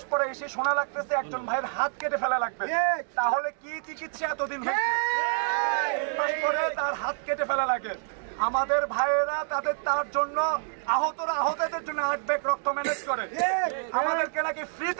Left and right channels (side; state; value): left; silent; 60 dB below the other